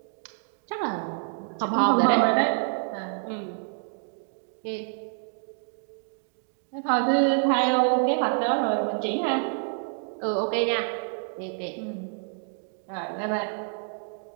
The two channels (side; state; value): left; silent; 60 dB below the other